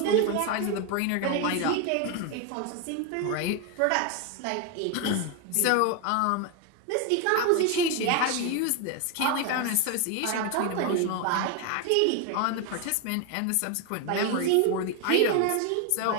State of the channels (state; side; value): different; both; correlation 0.01